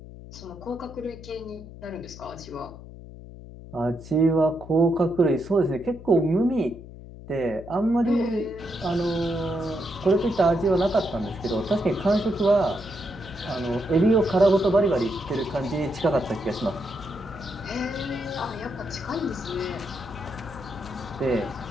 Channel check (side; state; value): left; noise; hum, 15 dB below the sound